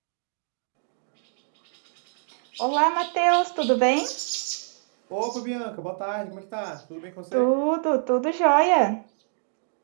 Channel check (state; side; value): silent; left; digital silence